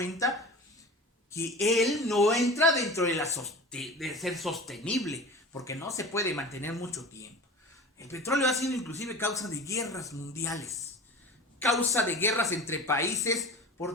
que él no entra dentro de ser sostenible, porque no se puede mantener mucho tiempo. El petróleo ha sido inclusive causa de guerras mundiales, causa de guerras entre países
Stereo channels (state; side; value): normal; both; correlation 0.35